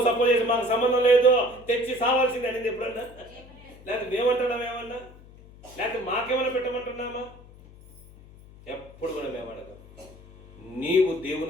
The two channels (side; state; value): left; noise; hum, 22 dB below the sound